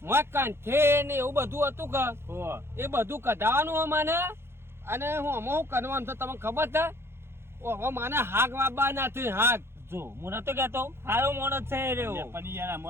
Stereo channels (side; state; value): left; late; 0.12 ms